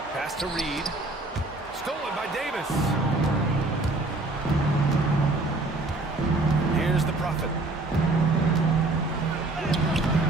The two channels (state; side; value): quieter; left; 3.0 dB